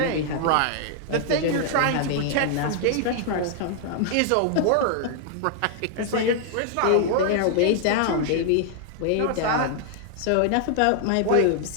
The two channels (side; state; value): both; different; correlation 0.00